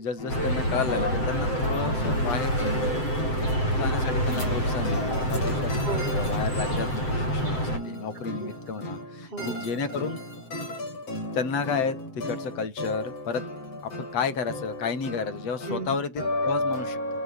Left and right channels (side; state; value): right; late; 7.7 ms